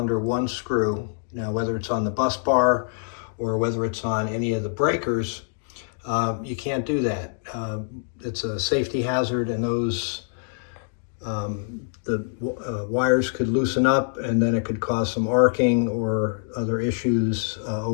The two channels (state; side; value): silent; right; digital silence